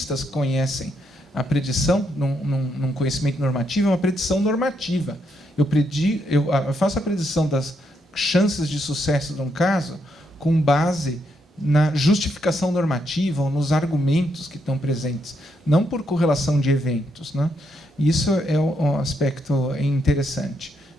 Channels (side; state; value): both; normal; correlation 0.77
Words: conhecem a predição num conhecimento normativo, é uma predição normativa. Eu faço a predição das chances de sucesso de um caso com base na justificação normativa ou nos argumentos que estão presentes, não por correlação de eventos, né? Isso é um aspecto interessante.